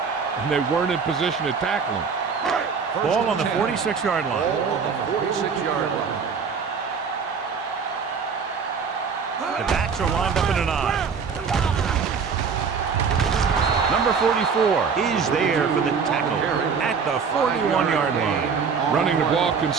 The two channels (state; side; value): quieter; left; 5.9 dB